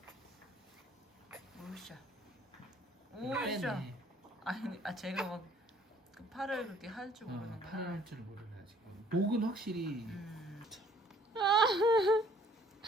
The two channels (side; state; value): both; normal; correlation 0.59